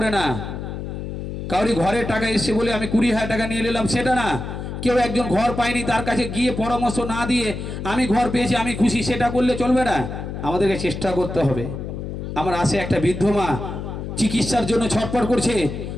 না, কাউরি ঘরের টাকা এসছে বলে আমি 20,000 টাকা নিয়ে নিলাম সেটা না। কেউ একজন ঘর পায়নি, তার কাছে গিয়ে পরামর্শ না দিয়ে আমি ঘর পেয়েছি, আমি খুশি, সেটা করলে চলবে না। আমাদেরকে চেষ্টা করতে হবে। আমার আসে একটা বৃদ্ধ মা চিকিৎসার জন্য ছটফট করছে,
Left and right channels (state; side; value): noise; left; hum, 7 dB below the sound